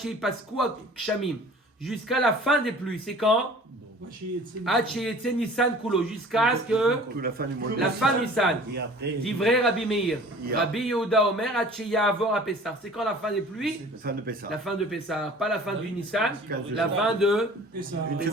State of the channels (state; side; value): normal; both; correlation 0.46